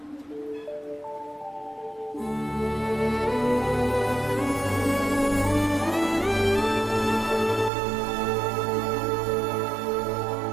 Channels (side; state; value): left; drops out; at 7.7 s